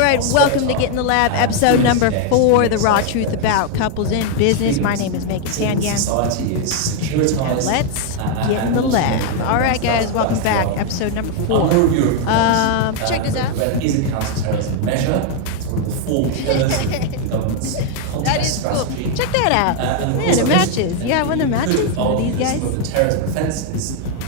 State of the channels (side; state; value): both; different; correlation 0.00